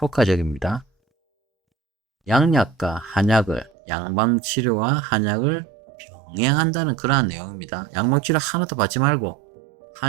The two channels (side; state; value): left; drops out; at 3.7 s